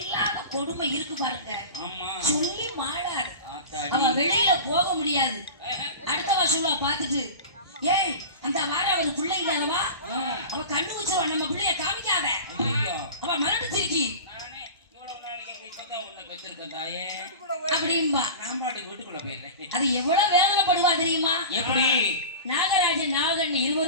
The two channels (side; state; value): both; inverted; correlation -0.32